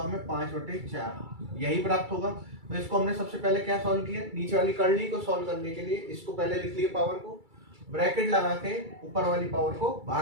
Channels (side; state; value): left; late; 2.3 ms